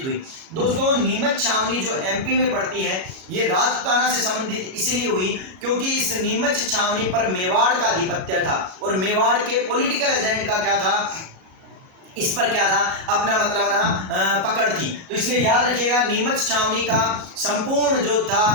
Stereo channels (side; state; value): left; late; 37 ms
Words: हुई दोस्तों, नीमच छावनी जो एमपी में पड़ती है ये राजपूताना से संबंधित इसलिए हुई क्योंकि इस नीमच छावनी पर मेवाड़ का आधिपत्य था और मेवाड़ के पॉलिटिकल एजेंट का क्या था, इस पर क्या था, अपना मतलब ना पकड़ थी। तो इसलिए याद रखिएगा नीमच छावनी का संपूर्ण जो